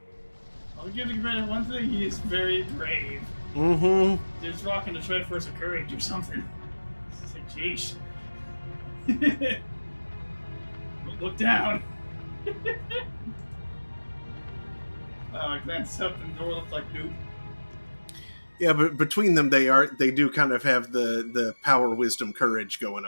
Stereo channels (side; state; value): both; inverted; correlation -1.00